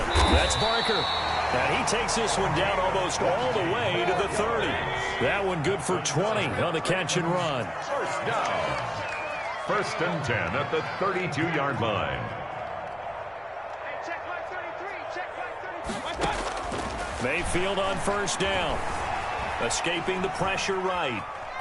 That's Barker. And he takes this one down almost all the way to the 30. That one good for 20 on the catch and run. First down. 1st and 10 at the 32-yard line. Hey, check my 33. Check my 33. Mayfield on 1st down. Escaping the pressure right.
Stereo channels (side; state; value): both; identical; correlation 1.00